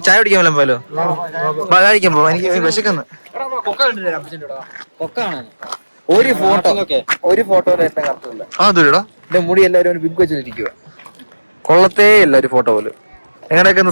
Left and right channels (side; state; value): both; inverted; correlation -1.00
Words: ചായ കുടിക്കാൻ വല്ല പോലോ? കഴിക്കാൻ പോ, എനിക്ക് വിശക്കുന്നു. ഒരു ഫോട്ടോ എന്നെ കറക്റ്റില്ല. അതൊരുടാ എന്റെ മുടി എല്ലാവരും ബിഗ് വെച്ചിരിക്കുക. കൊള്ളത്തേ ഇല്ല ഒരു ഫോട്ടോ പോലും. എങ്ങനെയൊക്കെ